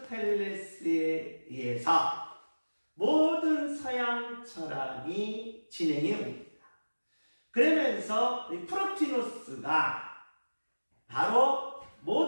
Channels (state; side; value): inverted; both; correlation -1.00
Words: 의해서 모든 서양 철학이 진행해 옵니다. 그러면서 프로티노스가 바로